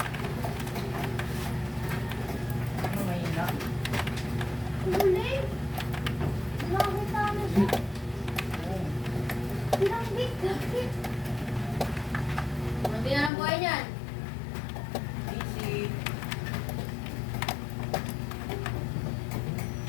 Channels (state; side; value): drops out; right; at 13.3 s